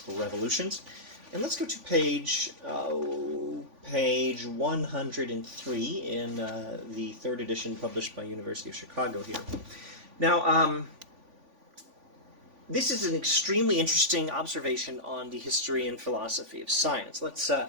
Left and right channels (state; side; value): late; left; 3.5 ms